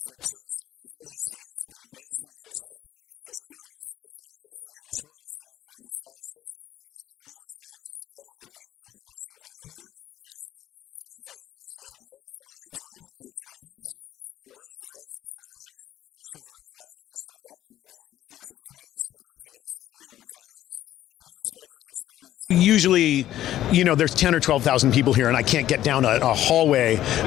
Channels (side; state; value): right; quieter; 12.9 dB